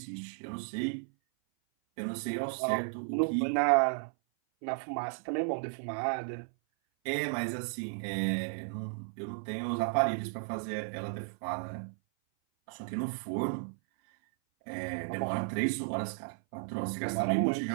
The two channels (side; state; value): left; silent; 55 dB below the other